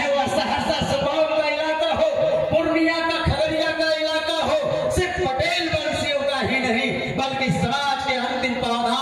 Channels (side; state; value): both; identical; correlation 1.00